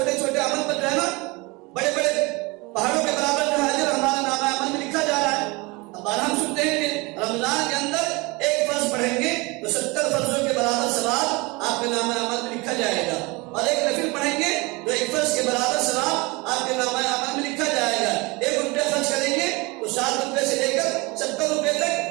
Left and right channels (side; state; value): left; quieter; 25.5 dB